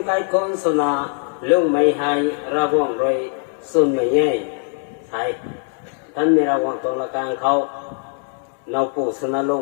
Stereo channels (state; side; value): silent; right; 55 dB below the other